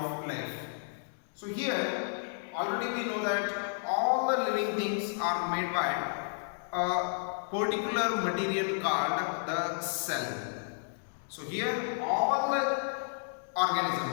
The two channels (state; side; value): silent; right; digital silence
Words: life. So, here already we know that all the living things are made by a particular material called the cell. So here all the